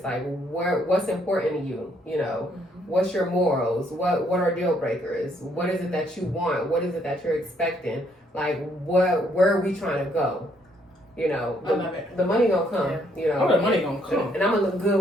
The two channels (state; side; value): normal; both; correlation 0.70